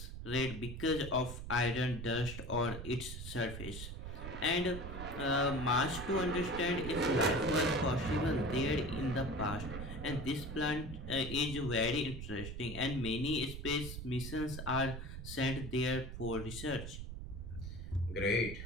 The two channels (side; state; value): right; noise; rumble, 8 dB below the sound